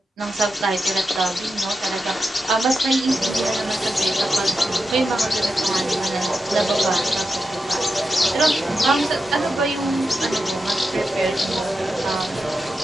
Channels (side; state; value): both; normal; correlation 0.89